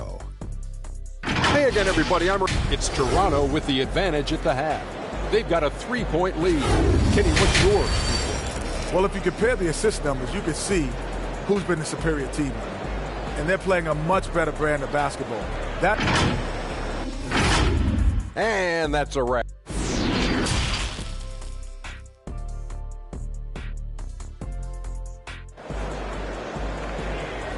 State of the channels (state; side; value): identical; both; correlation 1.00